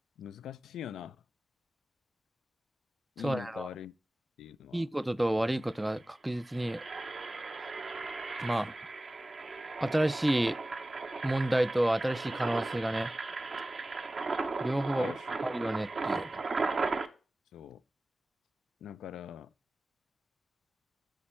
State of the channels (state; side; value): normal; both; correlation 0.96